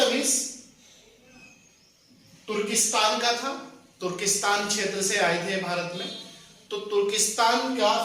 तुर्किस्तान का था, तुर्किस्तान क्षेत्र से आए थे भारत में। तो तुर्किस्तान का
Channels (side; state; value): both; identical; correlation 1.00